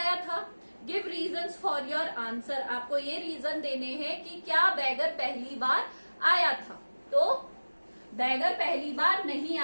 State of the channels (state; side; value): inverted; both; correlation -1.00